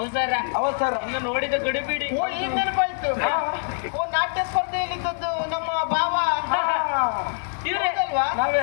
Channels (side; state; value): right; silent; digital silence